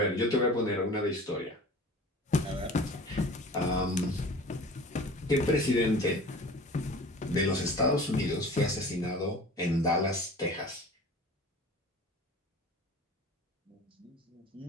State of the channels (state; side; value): normal; both; correlation 0.41